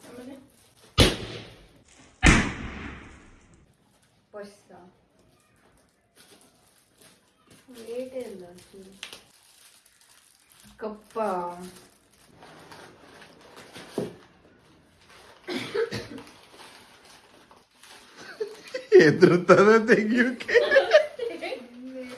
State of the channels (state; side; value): identical; both; correlation 1.00